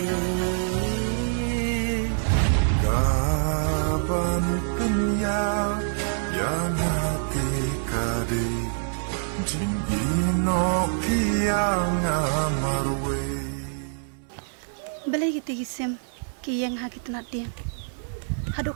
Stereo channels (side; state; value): left; silent; 60 dB below the other